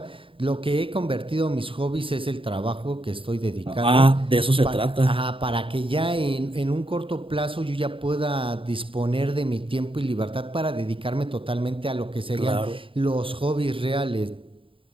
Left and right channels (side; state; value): left; late; 0.25 ms